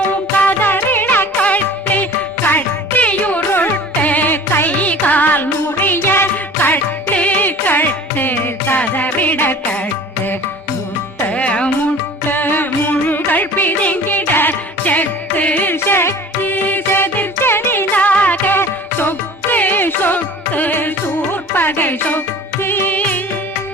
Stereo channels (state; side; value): normal; both; correlation 0.43